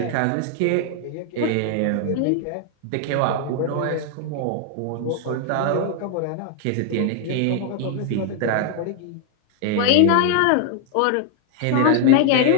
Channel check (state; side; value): different; both; correlation 0.00